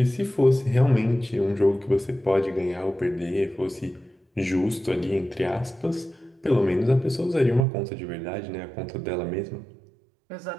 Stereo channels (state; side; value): drops out; left; at 7.7 s